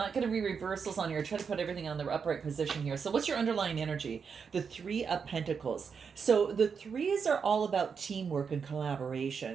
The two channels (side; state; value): left; quieter; 6.1 dB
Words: going to read reversals on here. Try to put everything on the upright position here. So what's your underlying energy? The Three of Pentacles. So the threes are all about teamwork and